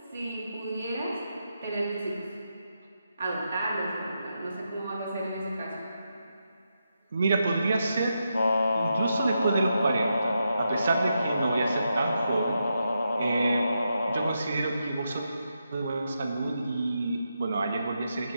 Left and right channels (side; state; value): both; inverted; correlation -0.85